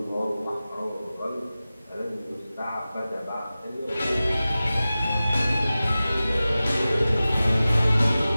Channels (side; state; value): both; inverted; correlation -0.96